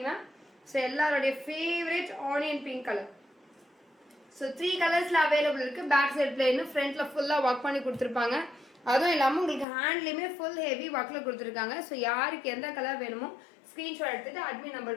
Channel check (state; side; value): drops out; right; at 9.7 s